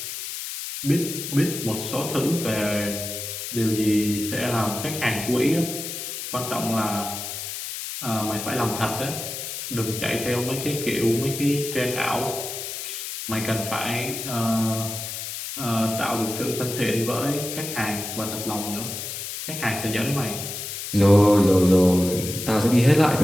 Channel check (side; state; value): left; noise; hiss, 7 dB below the sound